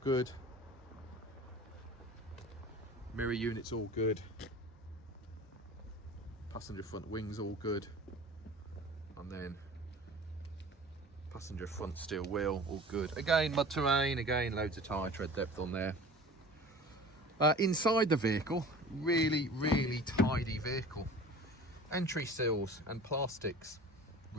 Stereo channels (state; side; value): normal; both; correlation 0.41